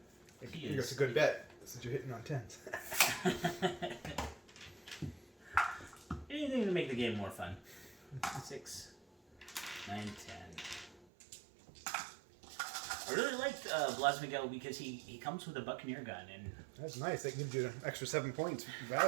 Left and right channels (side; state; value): left; drops out; at 11.1 s